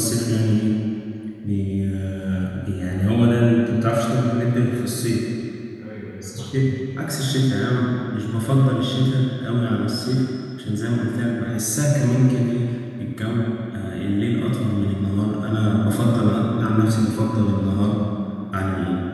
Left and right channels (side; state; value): both; identical; correlation 1.00